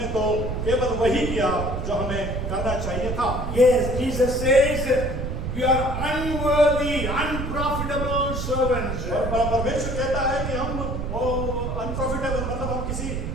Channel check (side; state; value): right; noise; rumble, 3 dB below the sound